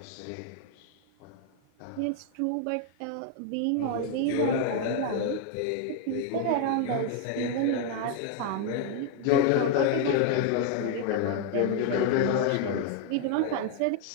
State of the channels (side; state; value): both; different; correlation 0.00